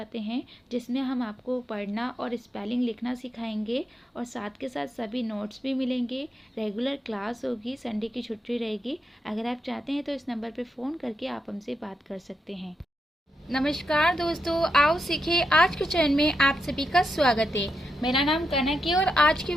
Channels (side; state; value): both; normal; correlation 0.84